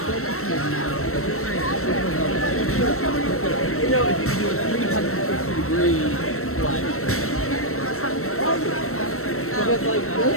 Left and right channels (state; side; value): late; right; 0.63 ms